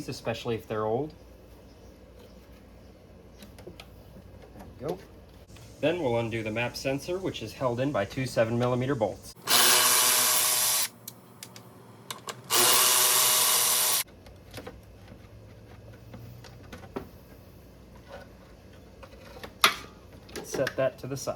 especially if they're old. There we go. Then we'll undo the map sensor, which is held in by 2 7mm bolts. Set that to the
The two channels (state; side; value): identical; both; correlation 1.00